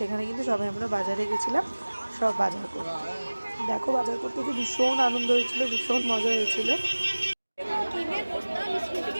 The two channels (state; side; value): inverted; both; correlation -1.00